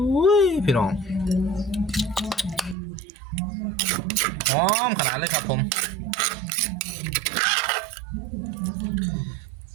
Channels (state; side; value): drops out; left; at 2.8 s